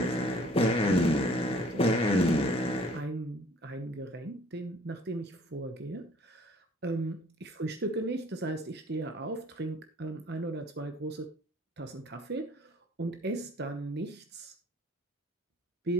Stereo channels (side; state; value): both; normal; correlation 0.55